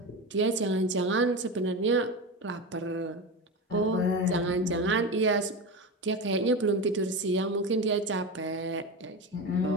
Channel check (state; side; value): normal; both; correlation 0.22